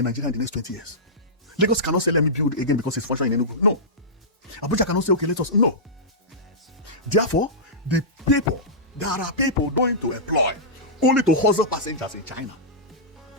Nigeria in the next 20 years. Lagos cannot say, let me build again because it's functioning in Enugu. No. Abuja cannot say, okay, let us... No. Therefore, There are people going to employ only to hustle passengers in China.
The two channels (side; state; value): both; normal; correlation -0.16